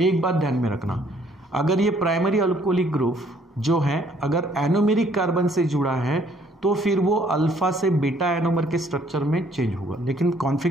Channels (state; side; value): normal; both; correlation 0.63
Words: बात ध्यान में रखना, अगर ये प्राइमरी अल्कोहलिक ग्रुप जो है अगर एनोमेरिक कार्बन से जुड़ा है तो फिर वो अल्फा से बीटा एनोमर के स्ट्रक्चर में चेंज होगा, लेकिन